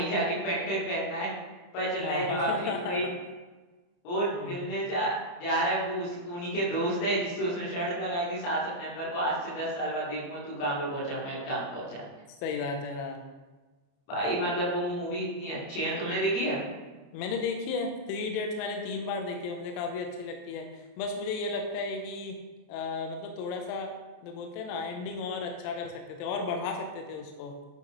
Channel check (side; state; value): right; late; 29 ms